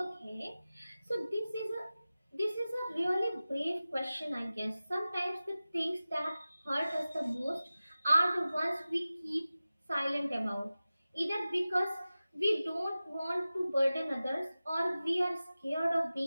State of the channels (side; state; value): both; inverted; correlation -0.96